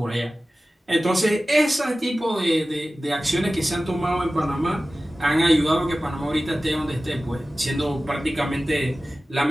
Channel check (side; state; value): both; normal; correlation 0.96